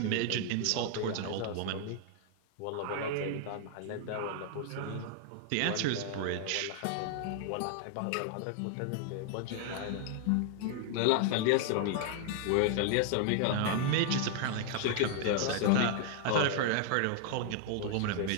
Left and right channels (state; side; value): different; both; correlation 0.00